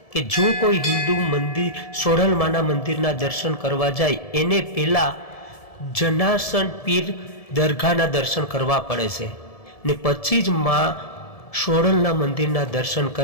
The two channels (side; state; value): right; late; 1.7 ms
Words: કે જો કોઈ હિન્દુ મંદિર સોડલમાના મંદિરના દર્શન કરવા જાય એને પહેલાં જનાસન પીર દરગાહના દર્શન કરવા પડે છે ને પછી જ માં સોડલના મંદિરના દર્શન